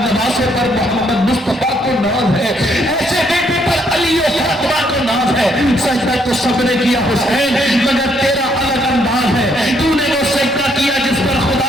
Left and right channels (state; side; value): normal; both; correlation 0.71